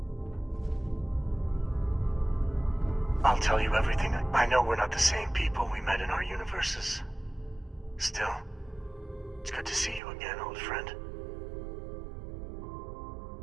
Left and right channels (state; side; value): drops out; left; at 10.0 s